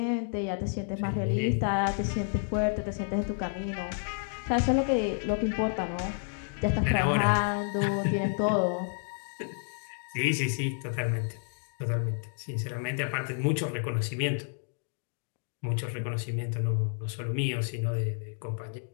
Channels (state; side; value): silent; right; digital silence